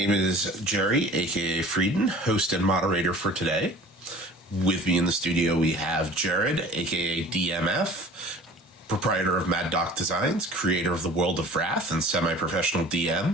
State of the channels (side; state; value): both; normal; correlation 0.45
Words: is Jerry, aka Frieden, host and moderator for today. With me in the studio, we have Jared, aka dm.f, proprietor of Mad Doc Designs, creator of the World of Wrath, and semi-professional DM,